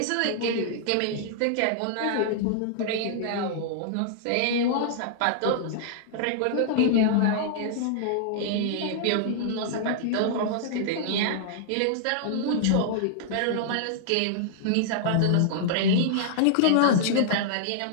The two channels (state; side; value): different; both; correlation -0.01